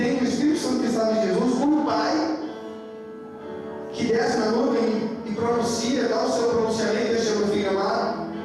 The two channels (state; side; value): identical; both; correlation 1.00